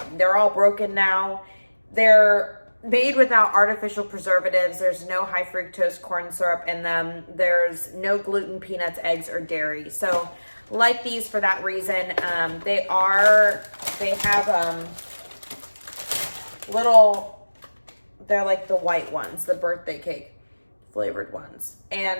They're all broken now. They're made without artificial preservatives. There's no high fructose corn syrup in them. There's no gluten, peanuts, eggs, or dairy. So like these for that reason. They have they're like the white ones, the birthday cake flavored ones.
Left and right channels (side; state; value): both; inverted; correlation -1.00